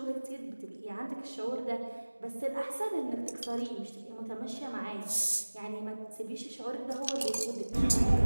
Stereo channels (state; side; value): inverted; both; correlation -1.00